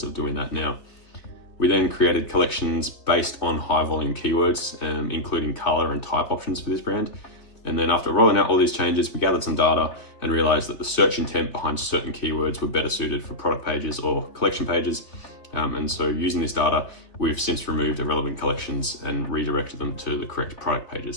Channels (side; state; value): right; late; 3.6 ms